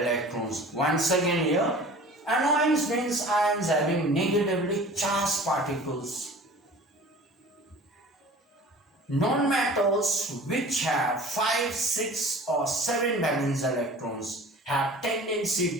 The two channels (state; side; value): normal; both; correlation 0.43